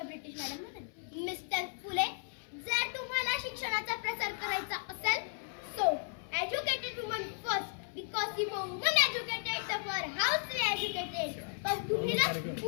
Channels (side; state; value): right; silent; 54 dB below the other